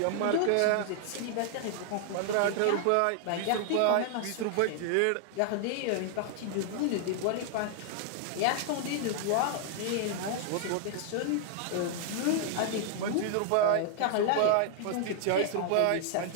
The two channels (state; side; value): different; both; correlation 0.00